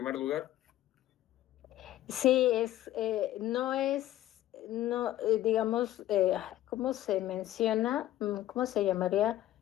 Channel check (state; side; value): quieter; right; 13.9 dB